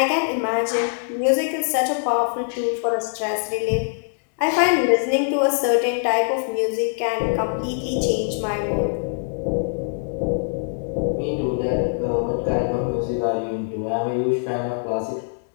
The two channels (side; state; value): right; silent; digital silence